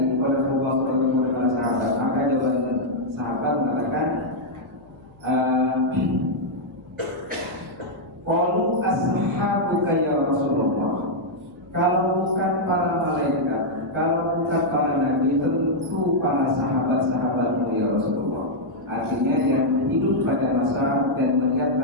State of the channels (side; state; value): left; noise; hum, 26 dB below the sound